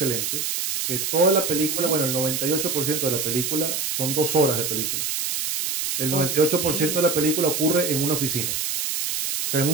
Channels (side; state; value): right; noise; hiss, 1 dB below the sound